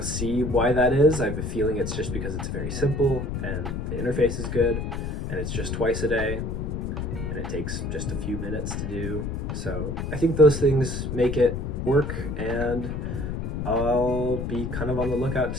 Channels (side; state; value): left; noise; rumble, 3 dB below the sound